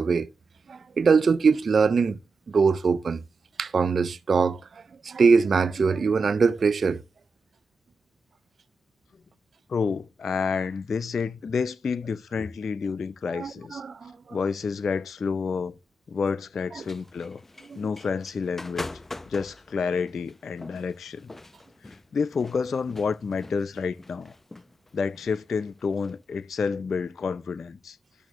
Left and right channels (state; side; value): normal; both; correlation 0.86